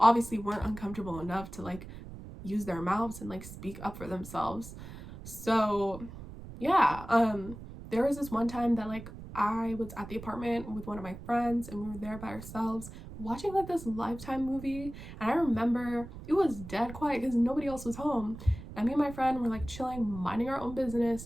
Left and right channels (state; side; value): noise; right; rumble, 13 dB below the sound